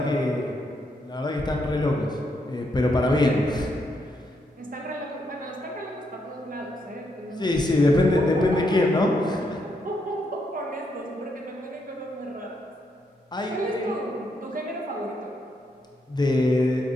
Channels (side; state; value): both; normal; correlation 0.78